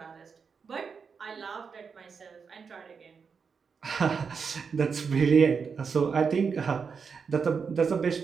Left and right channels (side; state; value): left; quieter; 5.8 dB